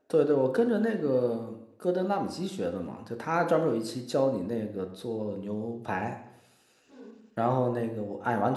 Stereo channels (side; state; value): both; identical; correlation 1.00